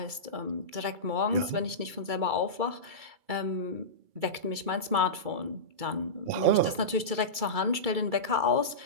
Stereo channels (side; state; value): left; late; 2.3 ms